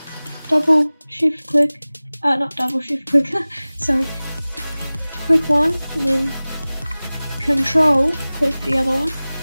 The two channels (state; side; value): inverted; both; correlation -0.99